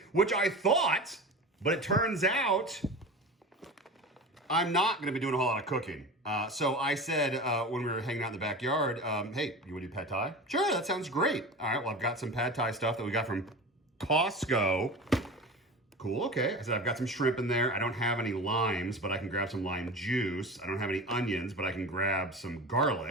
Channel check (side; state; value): both; normal; correlation 0.32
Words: which I thought, but it turns out I'm not going to be doing a whole lot of cooking. So I said when we were hanging out in the backyard, hey, you want to do pad thai? Sure, that sounds great. All right, well, I've got some pad thai stuff that we got from Costco. Cool, okay. I said, I've got some shrimp in there. I don't have any limes, but I can grab some lime juice. I don't have any onions, but I can grab some